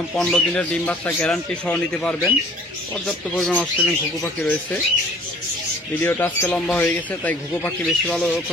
15 দিনের ডিম বাচ্চা গ্যারান্টি সহ নিতে পারবেন। পর্যাপ্ত পরিমাণ অস্ট্রেলিয়ান ঘুঘু পাখি রয়েছে। ভিডিওটা আজকে লম্বা হয়ে গেছে, তাই ঘুঘু পাখি বেশি ভালো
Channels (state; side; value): normal; both; correlation 0.52